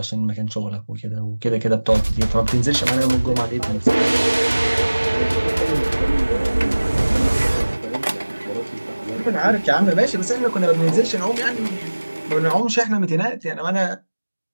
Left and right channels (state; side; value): inverted; both; correlation -1.00